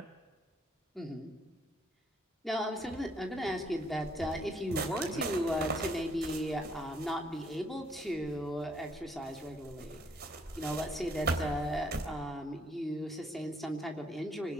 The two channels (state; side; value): normal; both; correlation 0.68